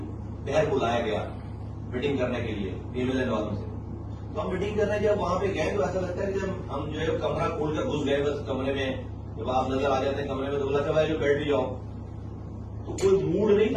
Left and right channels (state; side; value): identical; both; correlation 1.00